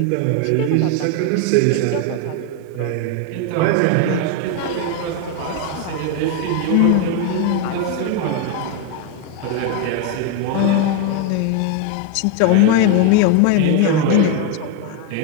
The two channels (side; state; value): both; different; correlation 0.01